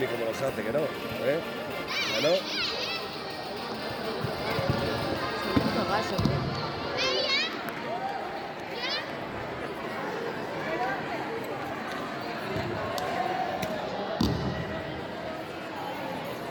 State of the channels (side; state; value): both; identical; correlation 1.00